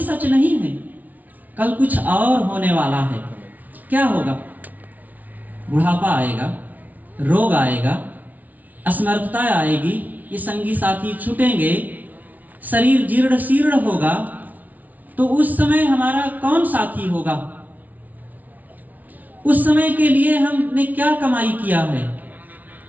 नहीं है, कल कुछ और होने वाला है। क्या होगा? बुढ़ापा आएगा, रोग आएगा, असमर्थता आएगी, ये संगी साथी छूटेंगे, शरीर जीर्ण शीर्ण होगा। तो उस समय हमारा कौन साथी होगा? उस समय के लिए हमने क्या कमाई किया है?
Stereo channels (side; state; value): left; late; 0.076 ms